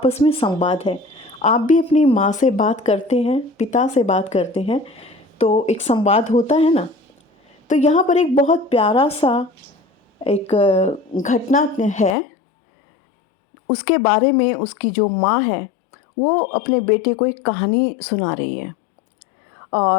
में संवाद है। आप भी अपनी माँ से बात करते हैं, पिता से बात करते हैं, तो एक संवाद होता है ना। तो यहाँ पर एक बहुत प्यारा सा एक घटना है, उसके बारे में उसकी जो माँ है वो अपने बेटे को एक कहानी सुना रही है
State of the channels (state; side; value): drops out; right; at 12.2 s